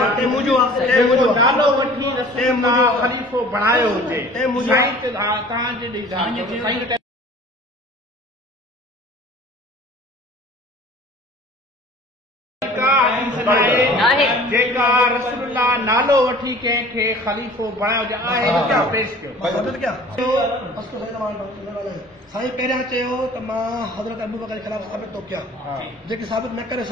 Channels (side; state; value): both; normal; correlation 0.46